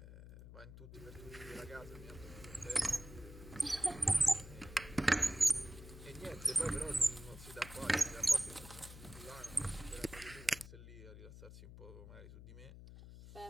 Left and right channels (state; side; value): noise; left; hum, 14 dB below the sound